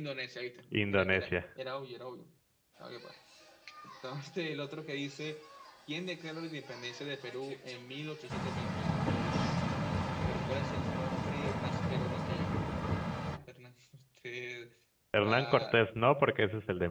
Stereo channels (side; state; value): both; identical; correlation 1.00